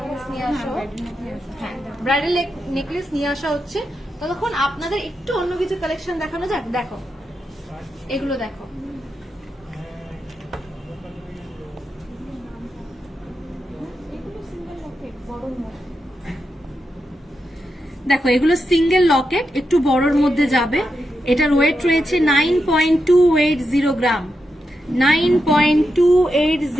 নিয়ে আসা, হ্যাঁ ব্রাইডাল নেকলেস নিয়ে আসা হচ্ছে। ততক্ষণ আপনাদের একটু অন্য কিছু কালেকশন দেখানো যাক। দেখো এগুলো দেখো, দেখো এগুলো সিঙ্গেল লকেট, একটু বড়র মধ্যে যাবে। এটার ওয়েট রয়েছে 9.280 গ্রাম,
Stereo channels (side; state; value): both; normal; correlation 0.86